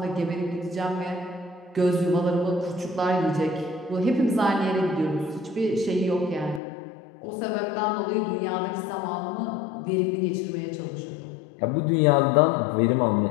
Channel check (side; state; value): right; drops out; at 6.6 s